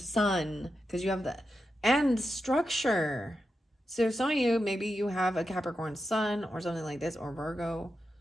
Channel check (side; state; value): both; normal; correlation 0.88